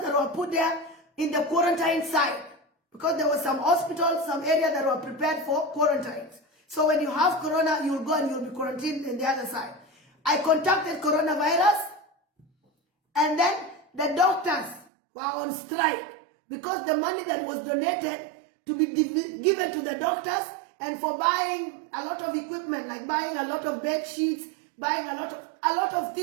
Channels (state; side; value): drops out; left; at 14.9 s